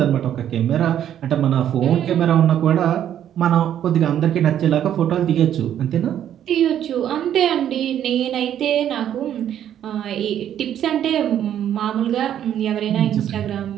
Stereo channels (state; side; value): quieter; left; 10.4 dB